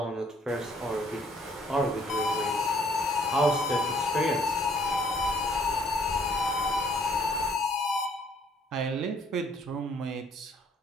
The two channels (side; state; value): both; normal; correlation 0.62